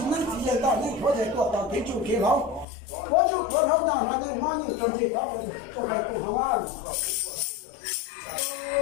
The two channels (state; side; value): drops out; right; at 2.7 s